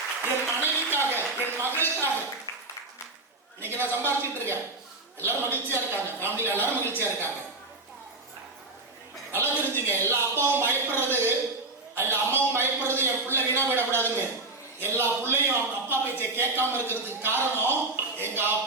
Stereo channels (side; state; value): left; quieter; 3.1 dB